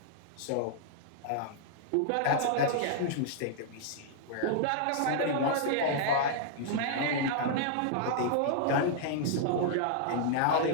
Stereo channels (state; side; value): different; both; correlation -0.01